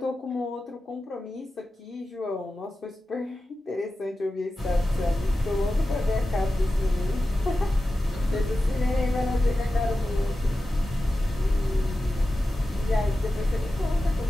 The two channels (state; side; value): normal; both; correlation 0.93